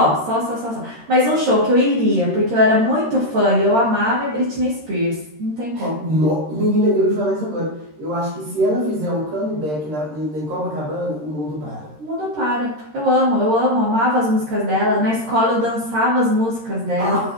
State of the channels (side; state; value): left; late; 13 ms